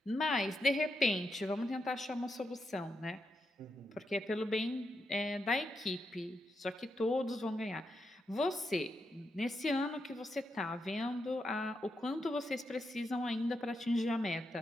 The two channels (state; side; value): normal; both; correlation 0.84